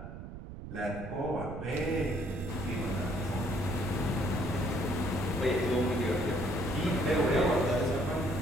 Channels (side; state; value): right; noise; rumble, 11 dB below the sound